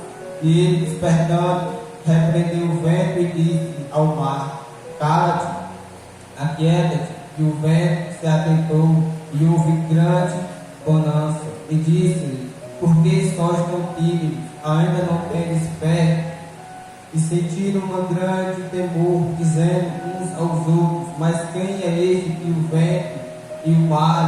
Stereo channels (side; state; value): both; identical; correlation 1.00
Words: E ele, despertando, repreendeu o vento e disse ao mar: cala-te, aquieta-te. E o vento se aquietou, e houve grande bonança. E disse-lhe: por que sois tão tímidos? Ainda não tendes fé? E sentiram um grande temor, dizendo uns aos outros: mas quem é este que o vento e o